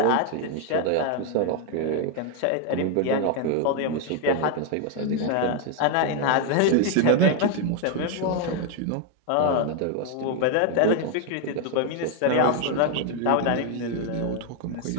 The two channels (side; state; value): both; different; correlation 0.01